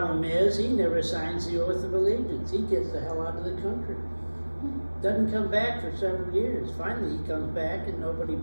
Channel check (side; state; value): both; inverted; correlation -1.00